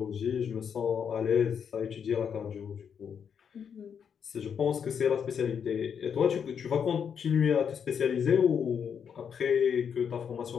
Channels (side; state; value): right; quieter; 7.4 dB